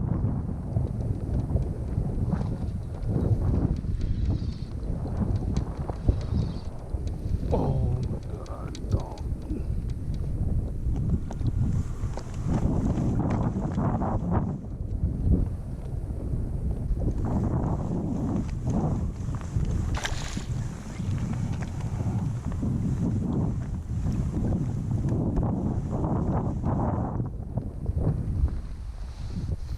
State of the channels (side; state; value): both; identical; correlation 1.00